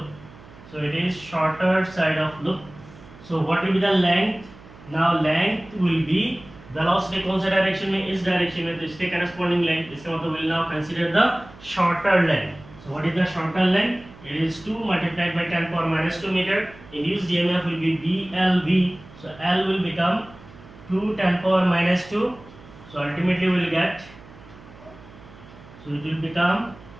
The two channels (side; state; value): right; noise; hum, 21 dB below the sound